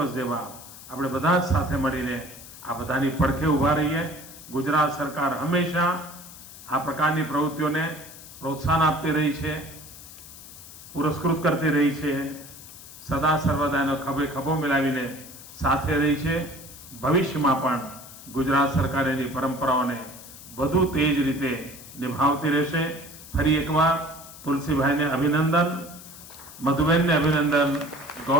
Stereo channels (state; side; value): noise; left; hiss, 16 dB below the sound